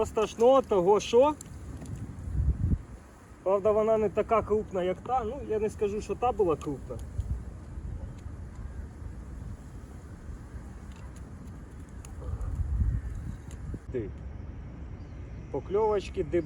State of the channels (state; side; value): identical; both; correlation 1.00